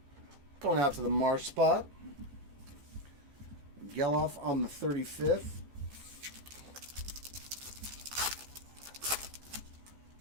Going out to the Marsh spot. Geloff on the 35th.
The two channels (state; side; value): late; left; 14 ms